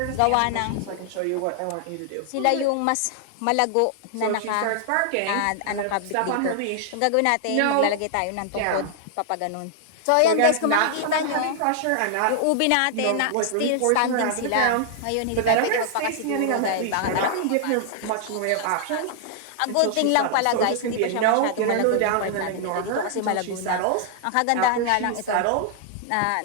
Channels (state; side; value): different; both; correlation -0.01